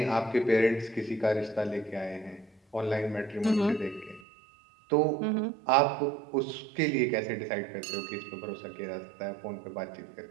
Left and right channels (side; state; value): left; drops out; at 4.2 s